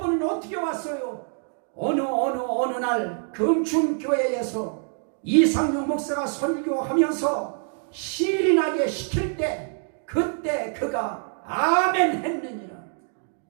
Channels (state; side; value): silent; left; 56 dB below the other